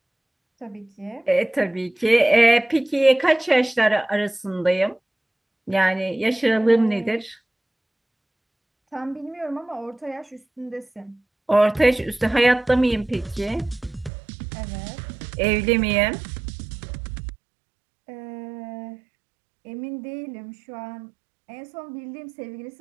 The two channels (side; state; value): left; drops out; at 14.1 s